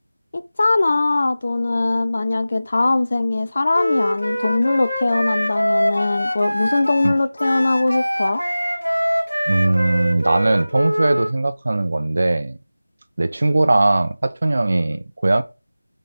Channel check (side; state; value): both; inverted; correlation -0.97